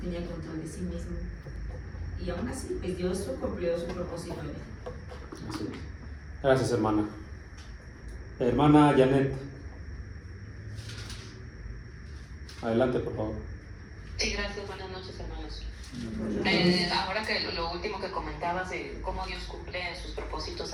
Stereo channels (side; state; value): both; identical; correlation 1.00